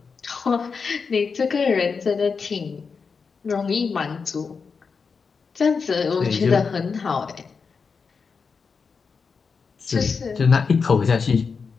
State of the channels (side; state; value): right; quieter; 5.3 dB